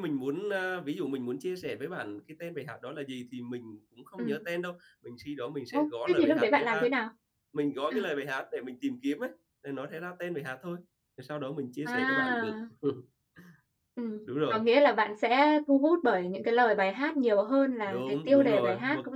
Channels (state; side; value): identical; both; correlation 1.00